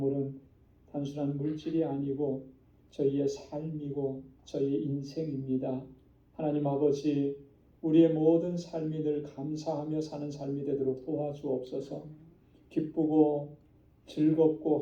단순한 물질이 아니고 저희의 삶이고 저희의 인생입니다. 하나님 아버지, 우리의 모든 삶이 늘 감사하며 사는 삶이 되도록 도와주옵소서. 기쁘고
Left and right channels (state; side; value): identical; both; correlation 1.00